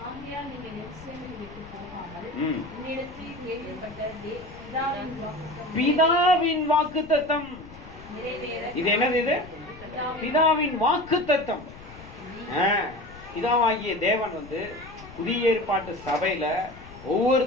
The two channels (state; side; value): noise; left; rumble, 18 dB below the sound